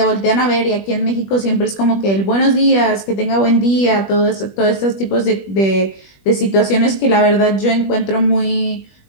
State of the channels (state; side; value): late; right; 21 ms